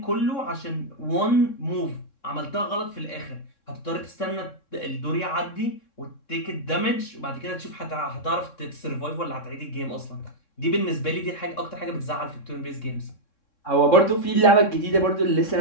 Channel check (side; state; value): right; late; 3.6 ms